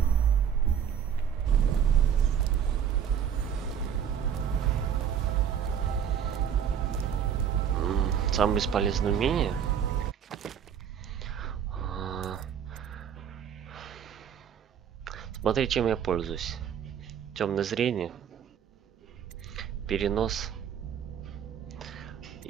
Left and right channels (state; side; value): quieter; left; 8.4 dB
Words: Самое бесполезное умение. Смотри, чем я пользуюсь. Темное зрение, перенос